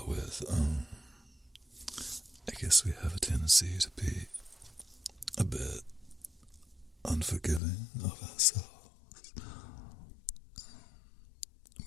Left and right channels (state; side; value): drops out; right; at 7.6 s